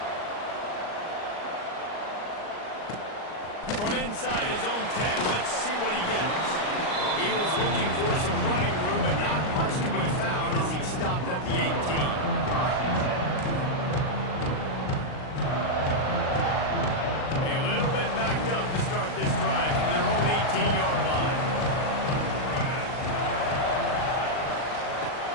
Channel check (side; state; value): right; late; 39 ms